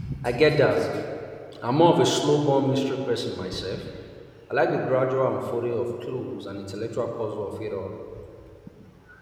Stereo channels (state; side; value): identical; both; correlation 1.00